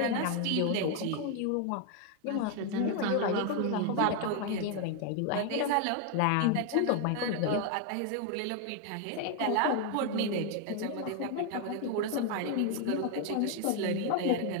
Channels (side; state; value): both; different; correlation 0.01